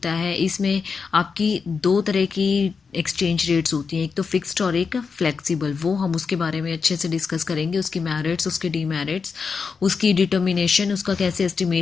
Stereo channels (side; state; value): right; quieter; 5.3 dB